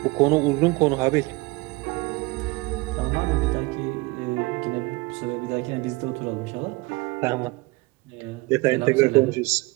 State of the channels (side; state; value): left; quieter; 24.0 dB